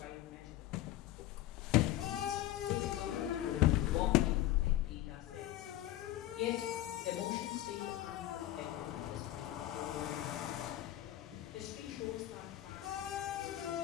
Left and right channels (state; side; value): quieter; right; 14.6 dB